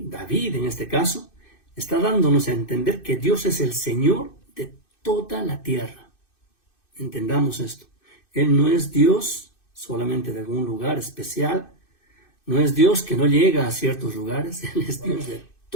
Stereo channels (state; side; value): late; right; 2.6 ms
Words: David en este caso, está dándonos a entender que Dios es el Señor de toda la tierra. Entendamos esto. Él no es Dios solamente de algún lugar especial, no es Dios que no llega a ciertos lugares, Él es Dios de